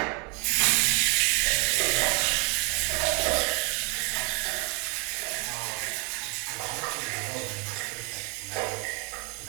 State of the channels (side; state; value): left; quieter; 33.8 dB